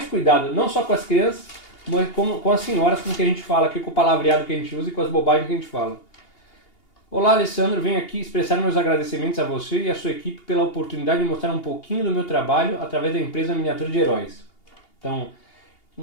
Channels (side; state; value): right; late; 2.8 ms